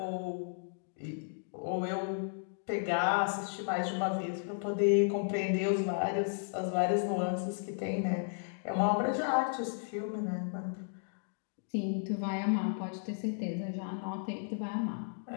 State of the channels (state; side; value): silent; right; digital silence